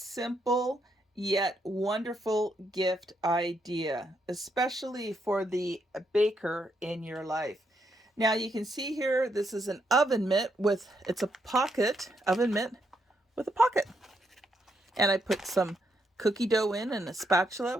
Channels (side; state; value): both; normal; correlation 0.78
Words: yet wonderful gift idea, especially for the baker in your life. Now you can see here, this is an oven mitt with, it's a pocket, oven mitt with a pocket. And I put some cookie dough in and a spatula,